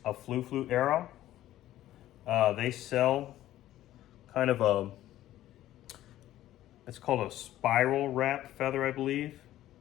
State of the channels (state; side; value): quieter; right; 13.8 dB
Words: a flu arrow. They sell kind of a, it's called a spiral wrap feather, I believe.